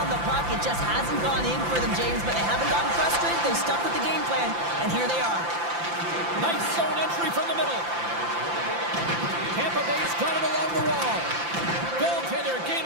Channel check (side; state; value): left; late; 5.8 ms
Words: on the puck. It just hasn't gone in for them, James, but they haven't gotten frustrated. They've stuck with the game plan, and here they are. Nice zone entry from the middle. Tampa Bay's got it along the wall. Goaltender gave